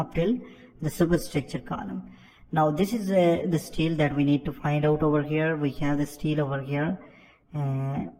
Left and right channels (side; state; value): both; identical; correlation 1.00